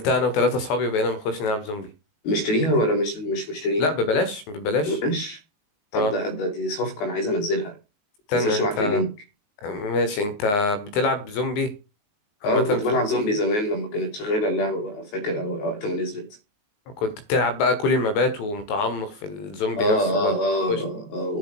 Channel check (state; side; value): late; right; 19 ms